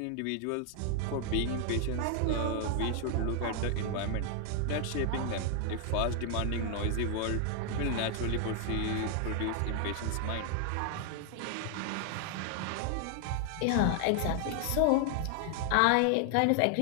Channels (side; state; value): both; different; correlation 0.00